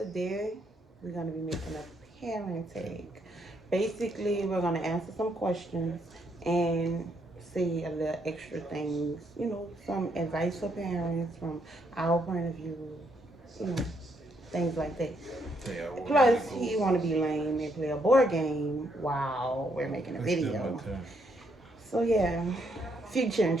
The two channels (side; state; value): both; normal; correlation 0.74